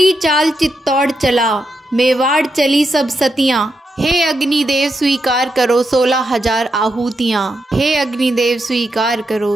चाल चित्तौड़ चला, मेवाड़ चली सब सतियाँ, हे अग्निदेव स्वीकार करो 16,000 आहूतियाँ, हे अग्निदेव स्वीकार करो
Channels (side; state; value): both; normal; correlation 0.84